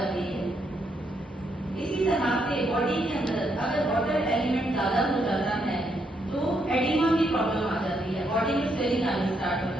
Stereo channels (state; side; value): normal; both; correlation 0.77